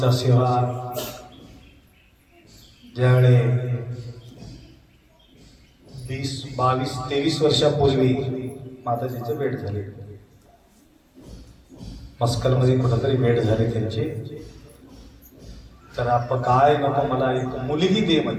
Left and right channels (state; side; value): identical; both; correlation 1.00